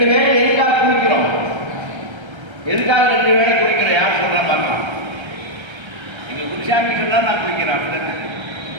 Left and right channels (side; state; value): left; late; 1.3 ms